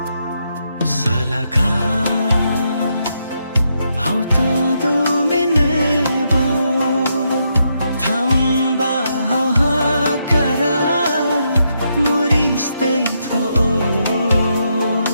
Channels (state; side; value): inverted; both; correlation -0.80